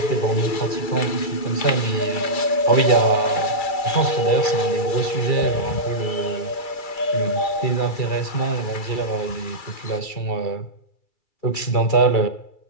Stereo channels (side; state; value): right; late; 2.3 ms